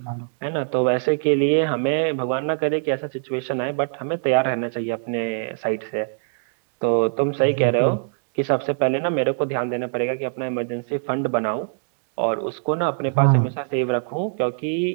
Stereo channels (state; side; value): silent; left; digital silence